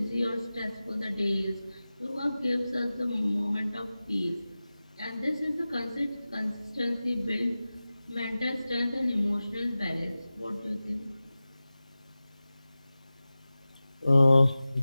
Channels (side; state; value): both; inverted; correlation -0.96